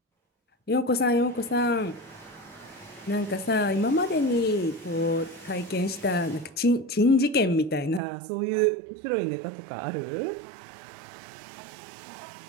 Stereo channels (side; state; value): left; drops out; at 8.0 s